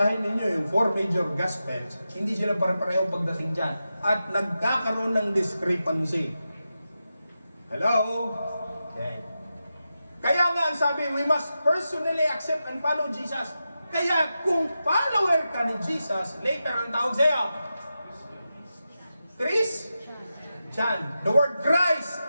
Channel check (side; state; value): both; inverted; correlation -0.90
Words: ninyo yung 4 major Gospels, hindi sila pare-pareho pagdating dyan. At nagkakaroon ng discrepancy. Hello? Okay. Kaya nga ang sabi, we must personally accept and follow Jesus. Kaya kung follower ka ni Jesus, later ang tawag sa'yo, Christian. The word Christ.